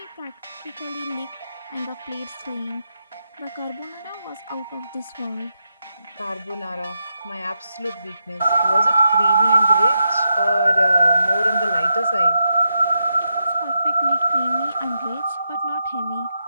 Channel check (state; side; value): inverted; both; correlation -0.85